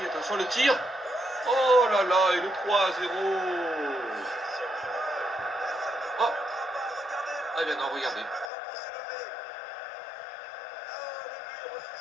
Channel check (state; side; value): drops out; right; at 8.5 s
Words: Attention, le tir. Oh là là, et le 3-0. Oh. Ah bien non, regardez.